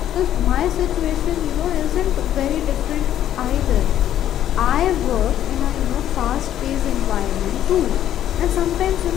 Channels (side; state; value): right; quieter; 11.4 dB